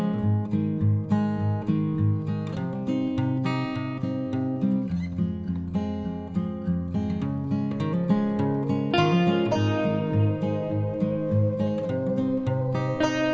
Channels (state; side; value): identical; both; correlation 1.00